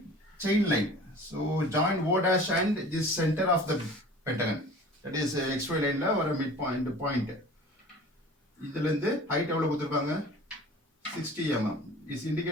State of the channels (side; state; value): both; normal; correlation 0.43